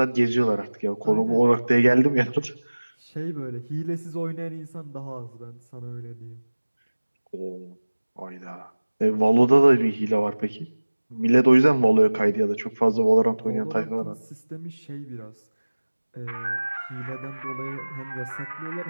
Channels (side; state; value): both; inverted; correlation -1.00